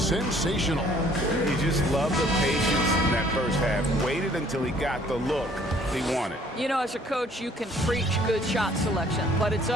You just love the patience in that first half. Waited until he got the look he wanted. You know, as a coach, you can preach good shot selection, but it's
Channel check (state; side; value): normal; both; correlation 0.59